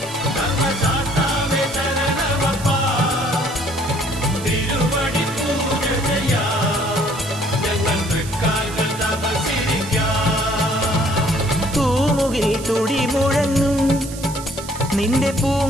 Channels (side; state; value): right; noise; hiss, 13 dB below the sound